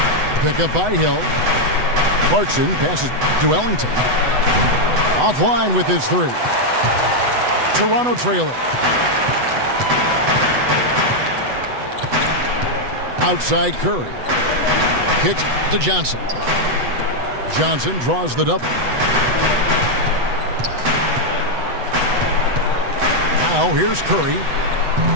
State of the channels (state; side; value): late; left; 8.0 ms